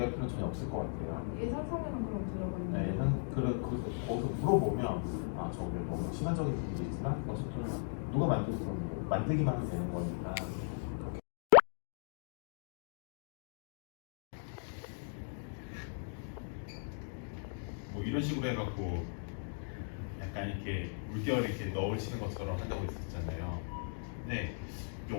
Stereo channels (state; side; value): silent; right; digital silence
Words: 필요는 전혀 없을 것 같아요. 예산상에는 그럼 들어가 있는. 네, 거기서 물어보면 저게 너무 시간적인 부분도 있지만 어쨌든 누가 만들든 뭐 만들기만 하면 되는 거니까. 뭐 이런 식으로 해갖고 약간 이렇게 물결 이렇게 넣으시는 것처럼 한다고 했었잖아요. 근데